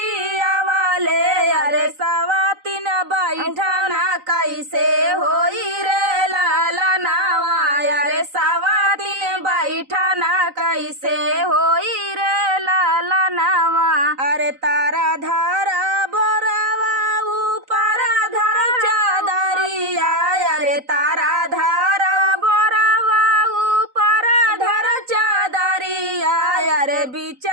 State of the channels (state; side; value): late; left; 3.9 ms